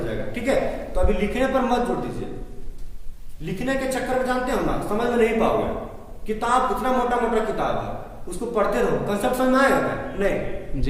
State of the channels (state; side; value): identical; both; correlation 1.00